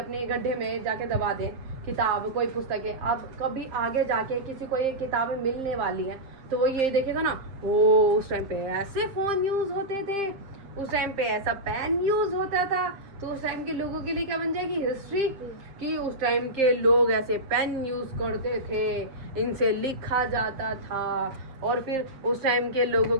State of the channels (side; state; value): left; late; 7.7 ms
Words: गड्ढे में जाके दबा दें, किताब, कोई पुस्तकें, अब कभी आगे जाके किसी को ये किताबें मिलने वाली हैं तो वो ये देखेगा ना, ओ उस टाइम पे ऐसे फ़ोन यूज़ होते थे, उस टाइम पे ऐसा पेन यूज़ होता था। तो उस टाइम के लोगों के लिए क्या बन जाएगी? हिस्ट्री, कि उस टाइम के लोग ऐसे पेन यूज़ करते थे, इनसे लिखा जाता था, और फिर उस टाइम के लोगों